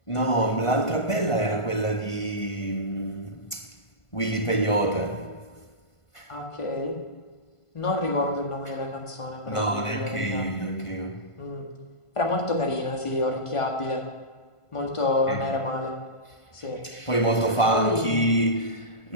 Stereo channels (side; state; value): right; late; 1.5 ms